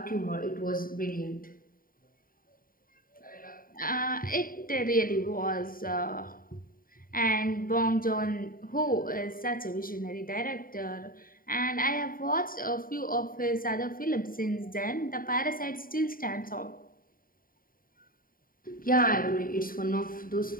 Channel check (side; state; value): right; late; 0.41 ms